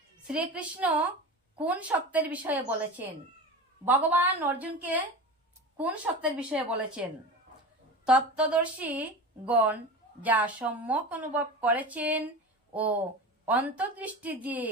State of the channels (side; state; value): both; normal; correlation 0.31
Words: শ্রীকৃষ্ণ কোন সত্যের বিষয়ে বলেছেন? ভগবান অর্জুনকে কোন সত্যের বিষয়ে বলেছেন? তত্ত্বদর্শী গণ যা সম্যক অনুভব করেছেন ও অন্তর্দৃষ্টি দিয়ে